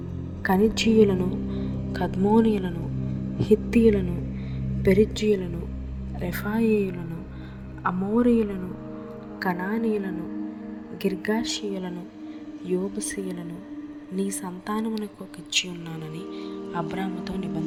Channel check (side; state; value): both; identical; correlation 1.00